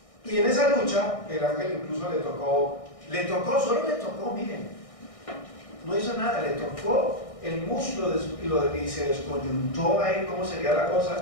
Y en esa lucha, el ángel incluso solo le tocó, miren, no hizo nada, le tocó el muslo y se descoyuntó ahí cómo sería la cosa.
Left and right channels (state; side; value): late; right; 1.6 ms